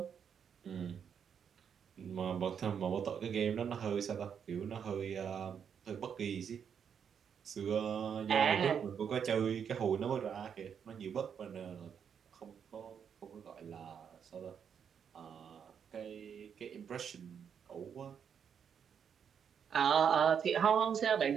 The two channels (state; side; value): quieter; left; 7.6 dB